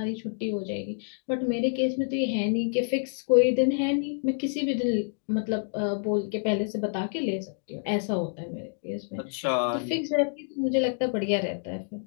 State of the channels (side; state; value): right; silent; digital silence